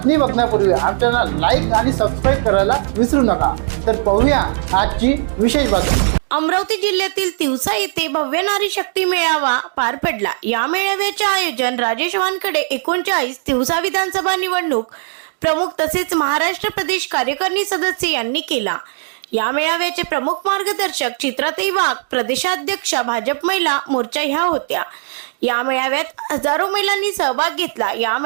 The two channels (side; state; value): left; silent; digital silence